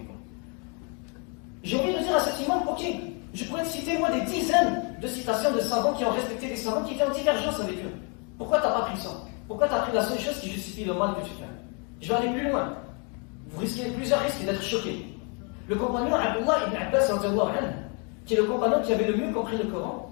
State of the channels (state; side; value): quieter; right; 35.8 dB